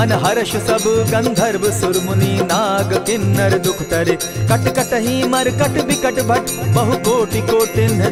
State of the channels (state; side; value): identical; both; correlation 1.00